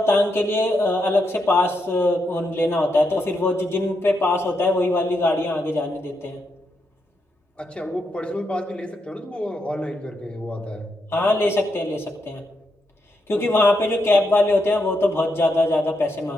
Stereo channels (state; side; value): normal; both; correlation 0.82